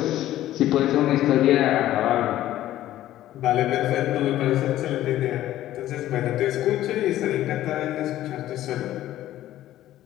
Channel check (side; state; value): right; quieter; 13.7 dB